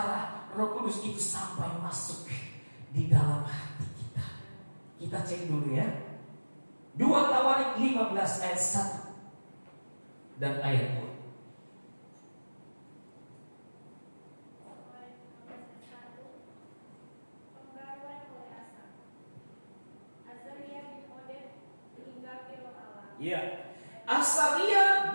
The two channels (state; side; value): inverted; both; correlation -1.00